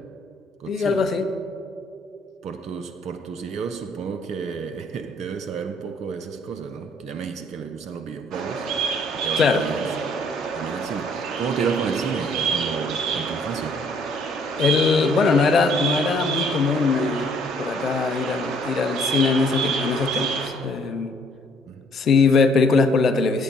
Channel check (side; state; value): both; normal; correlation 0.63